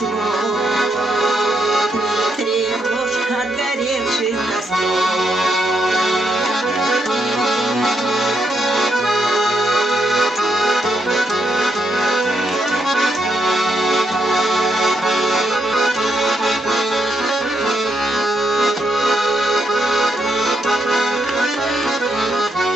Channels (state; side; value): normal; both; correlation 0.78